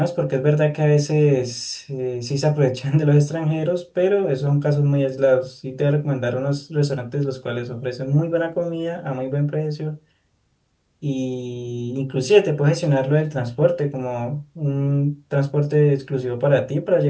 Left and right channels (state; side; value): identical; both; correlation 1.00